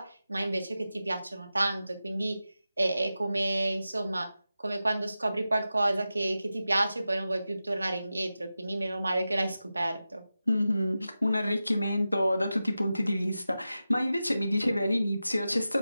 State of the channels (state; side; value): inverted; both; correlation -0.93